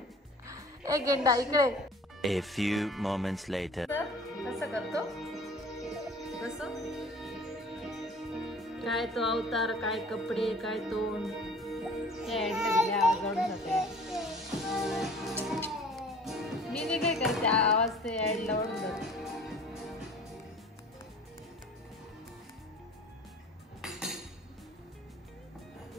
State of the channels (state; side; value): normal; both; correlation 0.47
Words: ए गेंडा इकडे. A few moments later. कसं करतो कसं, काय तो अवतार, काय कपडे, काय तोंड. मी नाही काय करते, आवाज ते ऍडला ओढून जाते.